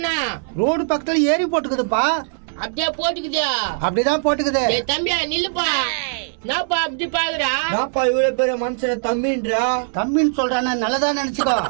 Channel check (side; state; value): left; silent; digital silence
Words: ரோடு பக்கத்துல ஏரி போட்டுக்குதுப்பா. அப்படியே போட்டுக்குது. அப்படிதான் போட்டுக்குது. டேய் தம்பியா நில்லுப்பா. நாப்பா அப்படி பாக்குறா? நாப்பா இவ்வளவு பெரிய மனுஷன தம்பின்றா? தம்பின்னு சொல்றானே நல்லதா நினைச்சுக்கோ.